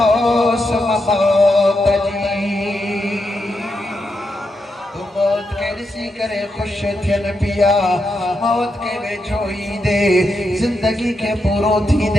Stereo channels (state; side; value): normal; both; correlation 0.84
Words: मौत जी तू मौत के ॾिसी करे खुश थियन पिया मौत के वेझो ईंदे जिंदगी के पूरो